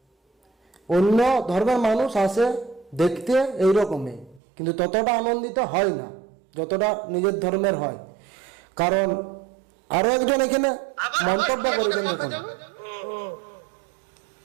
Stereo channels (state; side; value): drops out; left; at 4.4 s